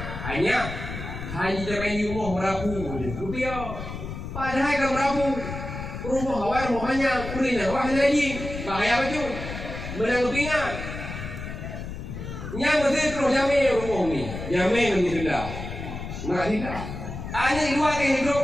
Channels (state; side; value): noise; left; rumble, 8 dB below the sound